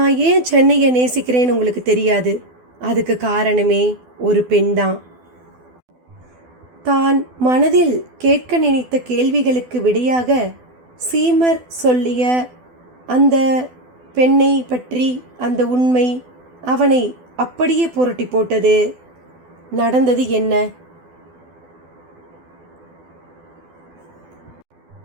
ஏன் சென்னையை நேசிக்கிறேன்னு உங்களுக்கு தெரியாது. அதுக்கு காரணமே ஒரு பெண்தான். தான் மனதில் கேட்க நினைத்த கேள்விகளுக்கு விடையாக சீமர் சொல்லிய அந்த பெண்ணை பற்றி அந்த உண்மை அவனை அப்படியே புரட்டி போட்டது. நடந்தது என்ன?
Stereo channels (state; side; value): late; left; 12 ms